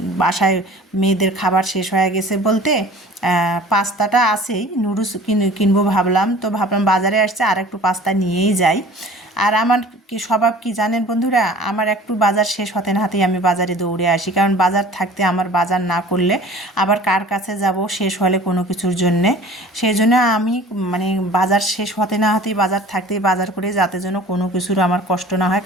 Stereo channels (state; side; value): normal; both; correlation 0.45